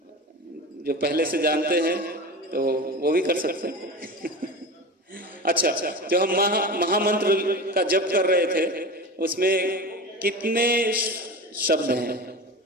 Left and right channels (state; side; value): normal; both; correlation 0.29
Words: जो पहले से जानते हैं तो वो भी कर सकते हैं। अच्छा, जो हम महामंत्र का जप कर रहे थे उसमें कितने शब्द हैं?